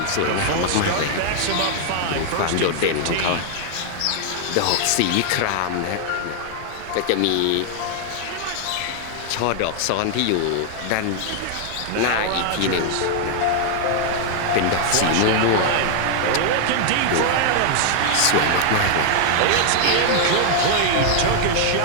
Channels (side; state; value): both; different; correlation 0.00